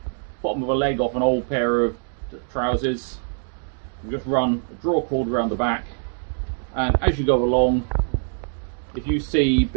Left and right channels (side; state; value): left; silent; 63 dB below the other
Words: bottom of a leg off an old pair of trousers. You just run a draw cord around the back, and as you go along, if you see